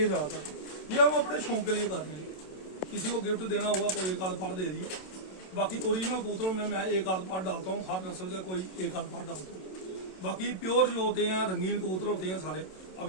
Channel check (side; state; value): right; late; 27 ms